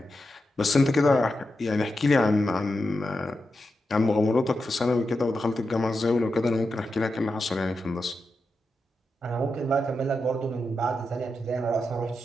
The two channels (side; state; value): both; normal; correlation 0.88